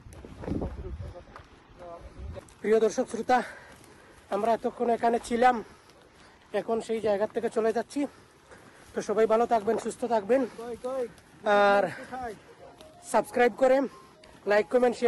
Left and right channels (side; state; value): both; identical; correlation 1.00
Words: প্রিয় দর্শক শ্রোতা, আমরা এতক্ষণ এখানে ছিলাম, এখন সেই জায়গা থেকে চলে যাচ্ছি। তো সবাই ভালো থাকবেন, সুস্থ থাকবেন, আর সাবস্ক্রাইব করে, লাইক কমেন্ট